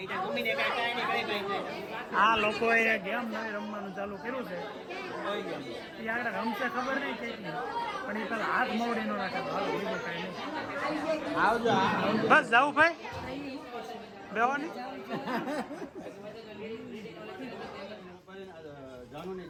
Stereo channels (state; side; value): identical; both; correlation 1.00